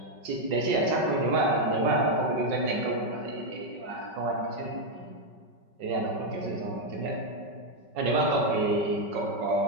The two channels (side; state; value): left; late; 5.4 ms